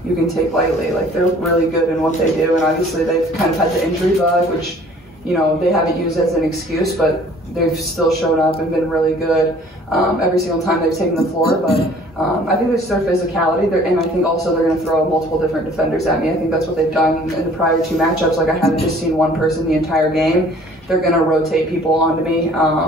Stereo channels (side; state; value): both; normal; correlation 0.53